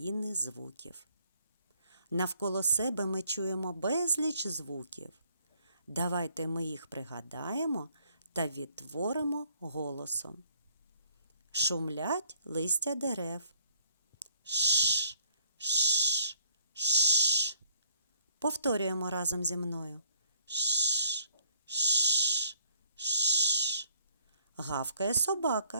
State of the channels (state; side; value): inverted; both; correlation -0.63